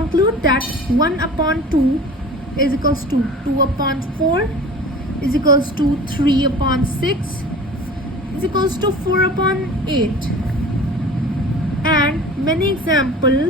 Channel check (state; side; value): normal; both; correlation 0.40